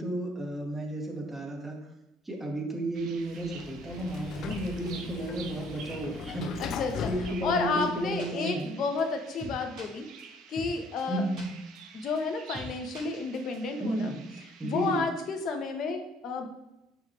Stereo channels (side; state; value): both; normal; correlation 0.61